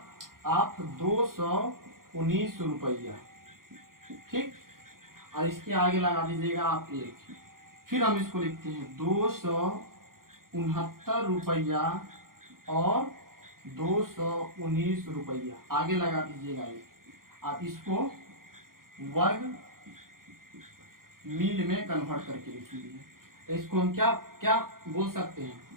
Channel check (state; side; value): late; left; 0.92 ms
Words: आप 219 रुपया। ठीक, और इसके आगे लगा दीजिएगा आप 1। फिर हम इसको लिखते हैं 269 रुपया और 219 रुपया, आगे लगा दीजिएगा 1। आप इसको वर्ग मील में कन्वर्ट करके लिखिए। इसको हम क्या क्या बोल सकते हैं,